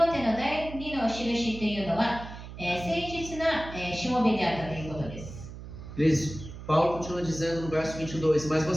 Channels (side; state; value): right; noise; hum, 12 dB below the sound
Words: テの第2の印というのは、誠実な、しもべであったということです。 Paulo continua dizendo no verso 22, mas